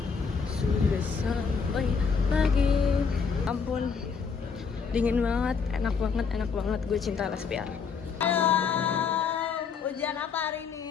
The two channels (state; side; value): quieter; right; 5.7 dB